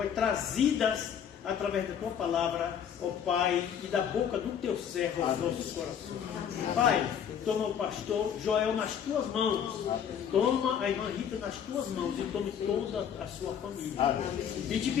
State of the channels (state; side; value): quieter; right; 8.4 dB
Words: trazidas através da tua palavra, ó Pai, e da boca do teu servo aos nossos corações. Pai, toma o pastor Joel nas tuas mãos, toma a irmã Rita nas tuas mãos e tome toda a sua família. E te